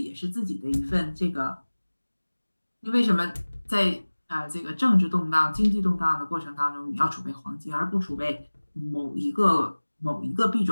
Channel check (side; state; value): both; inverted; correlation -1.00